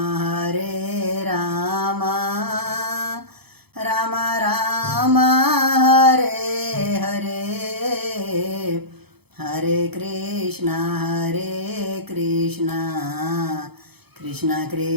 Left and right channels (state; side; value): late; left; 0.98 ms